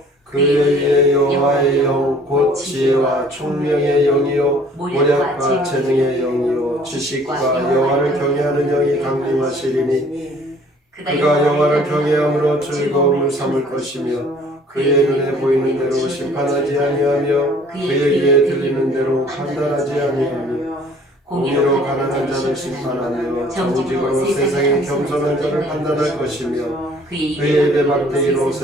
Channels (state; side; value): normal; both; correlation 0.55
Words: 그의 위에 여호와의 영 곧 지혜와 총명의 영이요 모략과 재능의 영이요 지식과 여호와를 경외하는 영이 강림하시리니 그가 여호와를 경외함으로 즐거움을 삼을 것이며 그의 눈에 보이는 대로 심판하지 아니하며 그의 귀에 들리는 대로 판단하지 아니하며 공의로 가난한 자를 심판하며 정직으로 세상에 겸손한 자를 판단할 것이며 그의 입의 막대기로